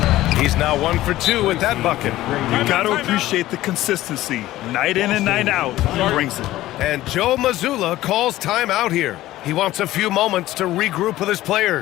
He's now 1 for 2 with that bucket. You got to appreciate the consistency. Night in and night out, he brings it. And Joe Mazzulla calls timeout here. He wants a few moments to regroup with his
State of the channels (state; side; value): quieter; right; 15.6 dB